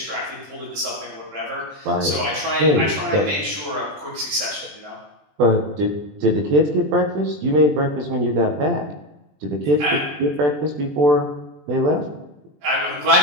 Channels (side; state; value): left; late; 20 ms